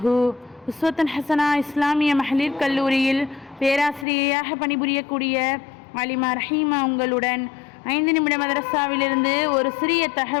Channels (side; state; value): right; drops out; at 4.0 s